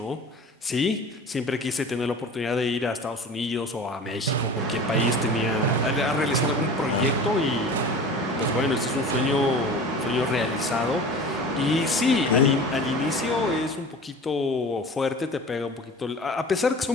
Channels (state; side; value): normal; both; correlation 0.38